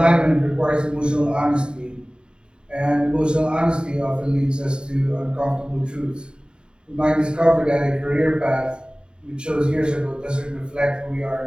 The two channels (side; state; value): left; late; 0.050 ms